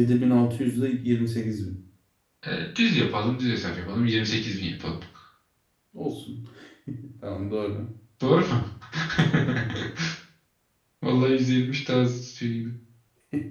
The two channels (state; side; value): identical; both; correlation 1.00